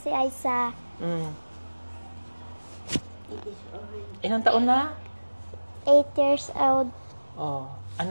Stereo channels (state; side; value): inverted; both; correlation -1.00